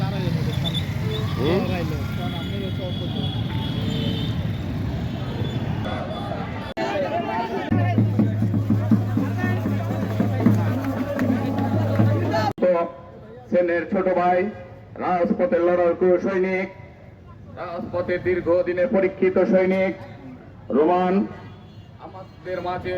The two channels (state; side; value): identical; both; correlation 1.00